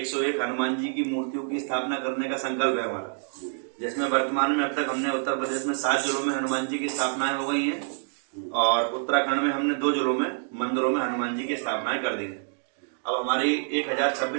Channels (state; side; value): silent; left; digital silence